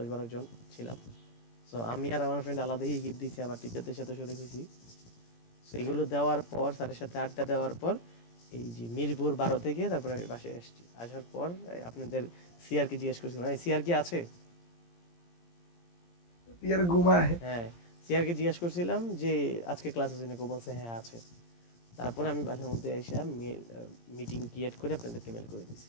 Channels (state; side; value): late; right; 17 ms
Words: জন ছিলাম। সো আমি আর আমার ফ্রেন্ড আলাদাই গিফট দিয়েছি, আবার টিচারদের সাথে শরিক হয়েছি। সেগুলো দেওয়ার পর স্যারের সাথে আড্ডা দেওয়ার পর এই যে মিরপুর 12 থেকে তারপরে আমি বাসায় আসছি। আসার পর আপনাদের সিআর কে জিজ্ঞেস করছিলাম, সিআর কি আছে? ইয়ার ঘুমায়। হ্যাঁ সিআর কে জিজ্ঞেস করছিলাম যে আজকে ক্লাস আছে নাকি, ও বলছে হ্যাঁ আছে। তারপরে আমি বাসার মধ্যে এসে মিটিং ক্রিয়েট করে আপনাদেরকে মেল করে দিয়েছি।